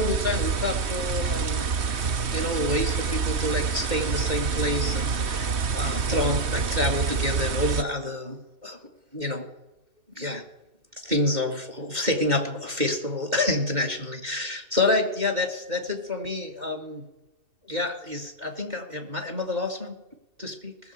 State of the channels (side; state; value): left; late; 3.2 ms